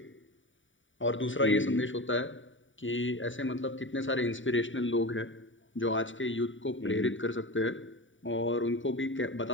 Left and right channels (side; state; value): right; late; 0.56 ms